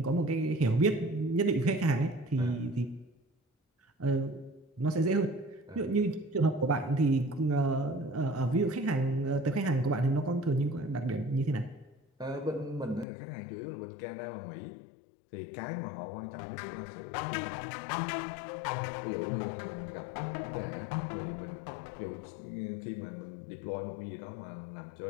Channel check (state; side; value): drops out; right; at 13.1 s